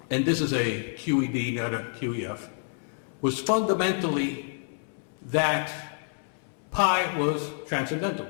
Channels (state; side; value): silent; right; 59 dB below the other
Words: and this is a QED, not a QEF, was fundamentally that pi was transcendental,